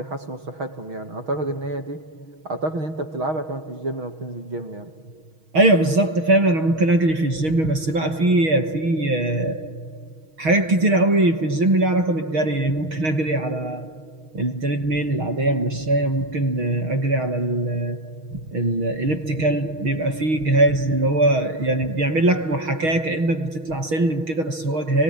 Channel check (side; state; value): left; late; 6.3 ms